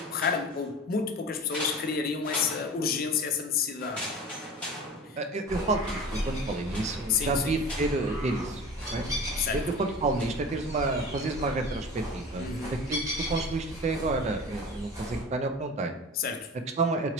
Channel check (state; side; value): normal; both; correlation 0.35